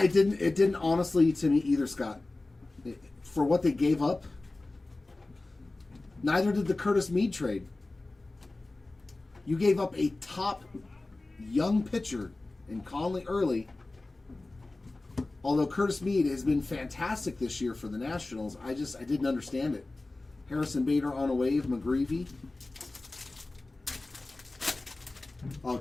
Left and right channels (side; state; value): right; quieter; 3.1 dB